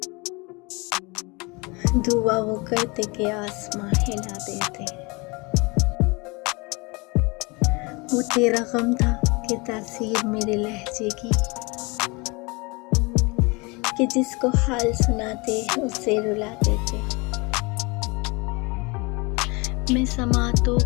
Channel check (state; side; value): quieter; right; 27.2 dB